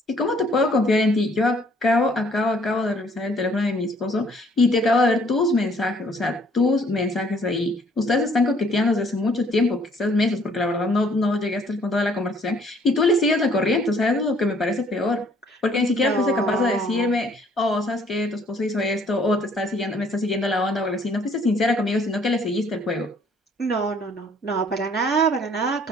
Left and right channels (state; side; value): normal; both; correlation 0.61